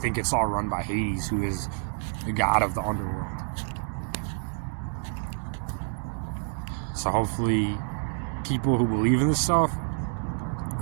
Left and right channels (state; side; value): silent; left; 59 dB below the other